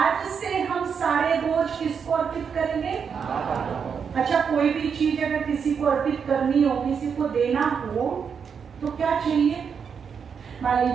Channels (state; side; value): quieter; left; 6.6 dB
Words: से हम सारे बोझ किसको अर्पित करेंगे? अच्छा, कोई भी चीज अगर किसी को अर्पित करनी हो, किसी को देना हो, तो क्या चाहिए? मान